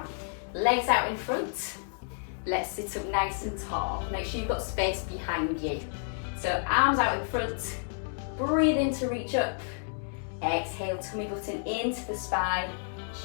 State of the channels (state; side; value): silent; right; digital silence